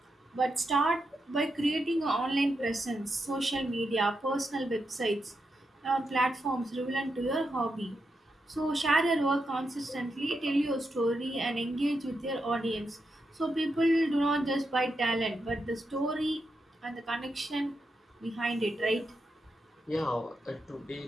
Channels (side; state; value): both; normal; correlation 0.85